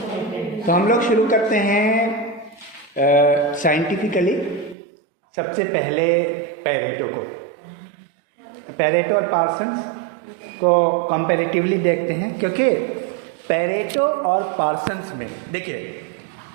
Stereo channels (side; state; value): left; drops out; at 4.8 s